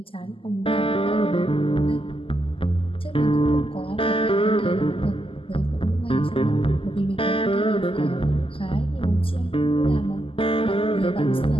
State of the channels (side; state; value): right; late; 0.26 ms